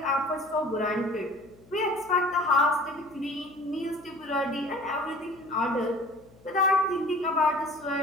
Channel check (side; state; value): left; noise; hum, 26 dB below the sound